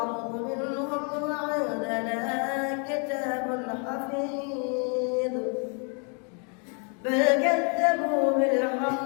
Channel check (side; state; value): right; quieter; 38.5 dB